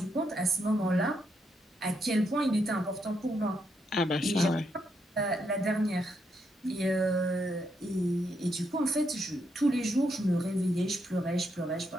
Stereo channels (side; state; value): both; normal; correlation 0.79